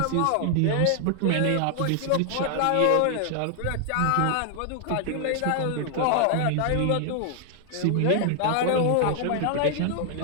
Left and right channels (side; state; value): both; different; correlation 0.00